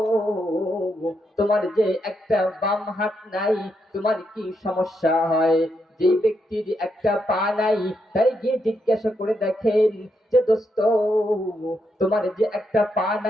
তোমার যে একটা বাম হাত নাই, তোমার কি সমস্যা হয়? যেই ব্যক্তির একটা পা নাই তাই গিয়ে জিজ্ঞাসা করে দেখেন যে দোস্ত তোমার যে একটা পা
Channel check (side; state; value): both; normal; correlation 0.80